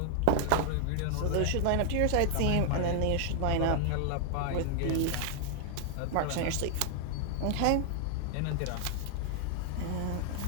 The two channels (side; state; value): both; different; correlation 0.00